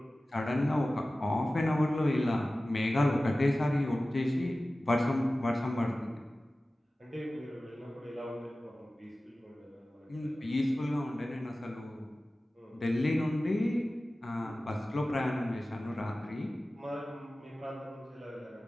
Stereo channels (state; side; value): normal; both; correlation 0.96